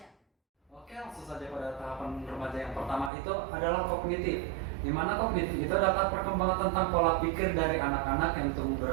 Oke, langsung saja pada tahapan remaja yang pertama itu adalah kognitif. Di mana kognitif itu adalah perkembangan tentang pola pikir dari anak-anak yang tumbuh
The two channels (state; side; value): drops out; left; at 3.1 s